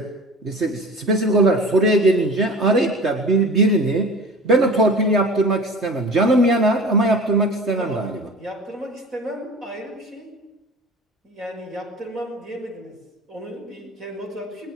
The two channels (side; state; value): both; normal; correlation 0.39